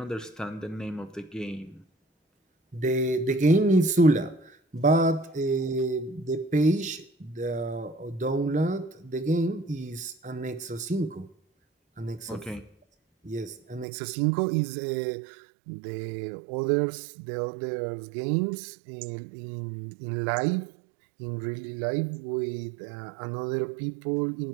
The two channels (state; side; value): drops out; left; at 13.9 s